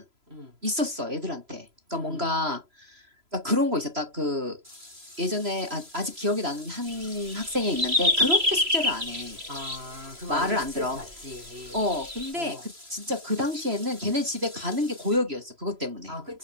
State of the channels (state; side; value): late; left; 3.0 ms